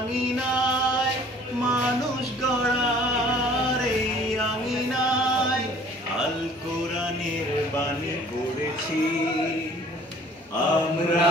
মানুষ গড়ার এই আঙিনায় আল কোরআনের বাণী পড়েছি, আমরা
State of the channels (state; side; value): normal; both; correlation 0.53